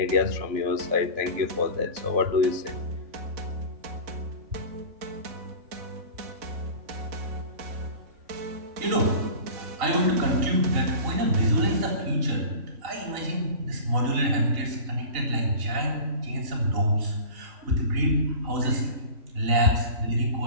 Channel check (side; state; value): left; late; 3.9 ms